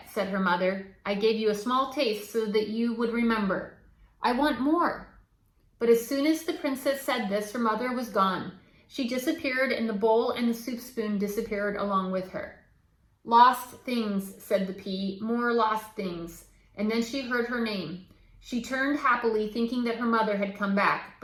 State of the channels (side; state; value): both; identical; correlation 1.00